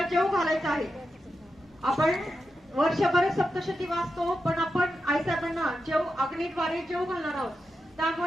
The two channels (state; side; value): normal; both; correlation 0.88